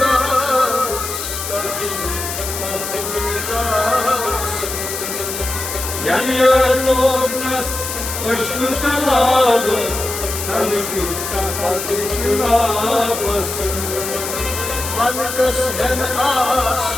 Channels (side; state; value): left; noise; hiss, 5 dB below the sound